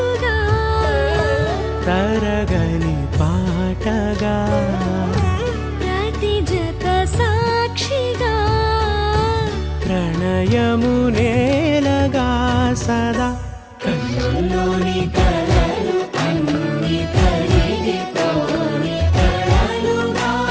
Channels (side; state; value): both; identical; correlation 1.00